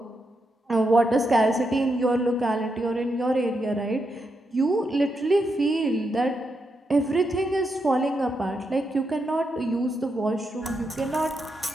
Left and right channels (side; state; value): both; normal; correlation 0.83